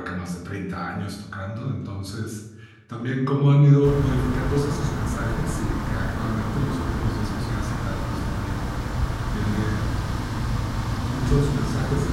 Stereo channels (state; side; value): identical; both; correlation 1.00